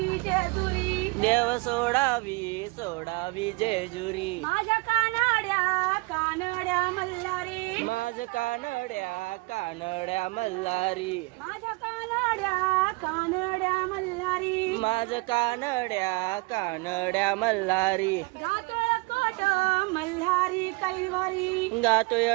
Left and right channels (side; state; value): left; quieter; 27.2 dB